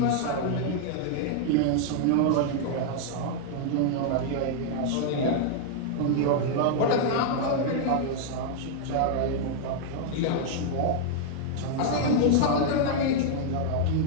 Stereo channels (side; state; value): both; different; correlation -0.01